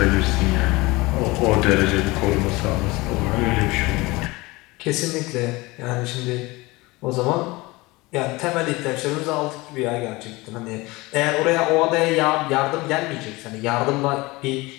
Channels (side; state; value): right; quieter; 22.3 dB